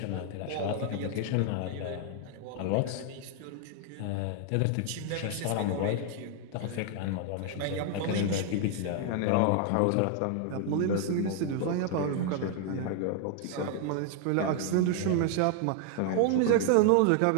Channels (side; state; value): both; different; correlation 0.00